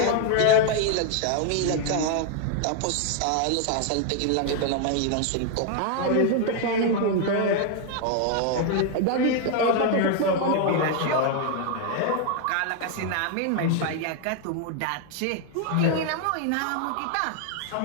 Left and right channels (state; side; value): different; both; correlation 0.00